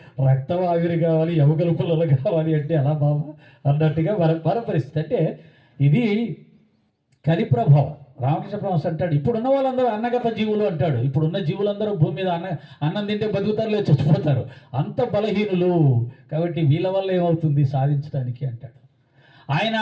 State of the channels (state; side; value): identical; both; correlation 1.00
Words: రక్తం ఆవిరి కావాలి, ఎముకలు పుల్లలు కావాలి అంటే ఎలా బాబా అన్నట్టుగా మన పరిస్థితి. అంటే ఇది కలి ప్రభావం. రామకృష్ణ పరమహంస అంటాడు, ఇప్పుడున్న వాళ్ళందరూ అన్నగత జీవులు అంటాడు. ఇప్పుడున్న జీవులందరూ భూమి మీద అన్నం తింటే బతుకుతారులే, చచ్చిపోతారు, అంత బలహీనులు. కాబట్టి వీళ్ళ వల్ల ఏమవుతుంది సాధించడానికి అంటాడు. ఆయన